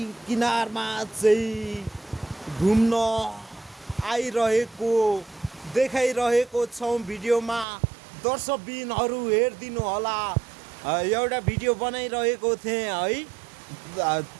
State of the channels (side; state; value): left; drops out; at 7.7 s